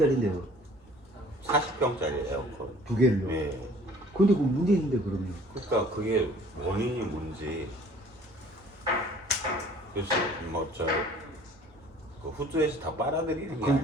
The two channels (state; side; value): normal; both; correlation 0.52